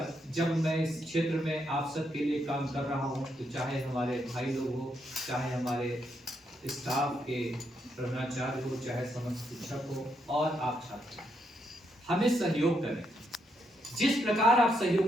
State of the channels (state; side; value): normal; both; correlation 0.78